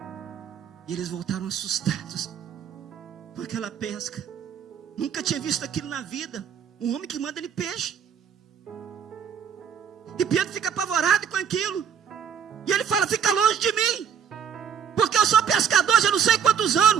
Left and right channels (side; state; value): left; quieter; 7.8 dB